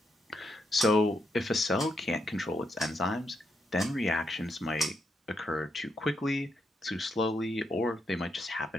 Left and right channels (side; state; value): both; normal; correlation 0.81